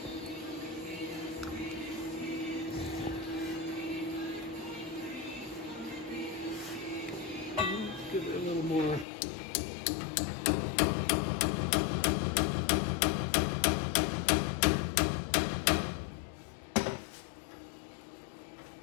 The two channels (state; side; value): drops out; right; at 9.1 s